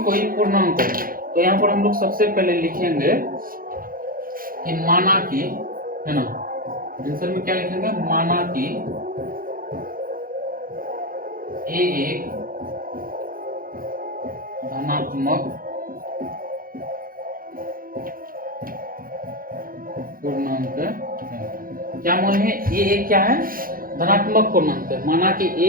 कोई पूर्णांक हो। तो यहाँ पर हम लोग सबसे पहले लिखेंगे कि माना कि, है ना, आंसर में क्या लिखेंगे, माना कि a एक धनात्मक पूर्णांक है। क्या मान है, a एक क्या है, धनात्मक पूर्णांक है। माना कि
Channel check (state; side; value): late; left; 0.41 ms